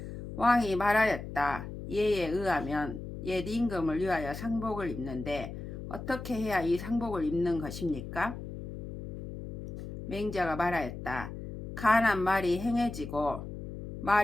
왕이 말하였다. 예에 의하면 옛 임금을 위하여 상복을 입는데 어떻게 해야 이 상복을 입는 것입니까? 맹자가 말하였다. 간한 말이 행해지고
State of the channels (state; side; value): noise; left; hum, 8 dB below the sound